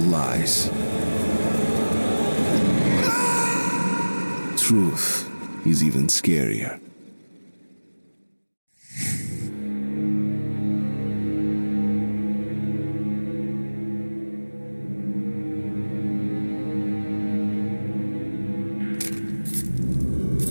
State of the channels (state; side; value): inverted; both; correlation -1.00